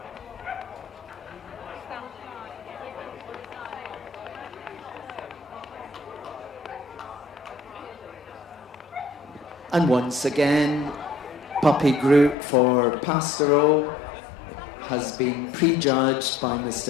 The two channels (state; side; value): drops out; right; at 12.4 s